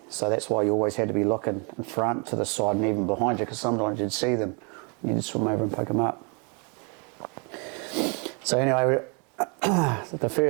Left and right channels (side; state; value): left; quieter; 35.0 dB